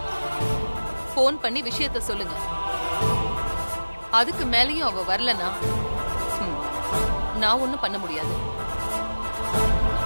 போன் பண்ணி விஷயத்த சொல்லுங்க. அதுக்கு மேலயும் அவ வரலனா நான் ஒண்ணும் பண்ண முடியாது.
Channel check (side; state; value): both; inverted; correlation -1.00